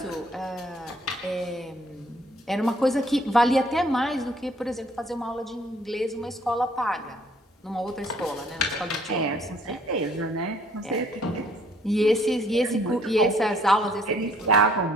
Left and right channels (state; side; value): normal; both; correlation 0.62